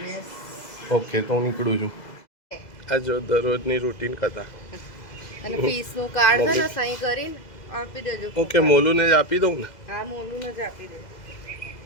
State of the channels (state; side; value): late; right; 2.0 ms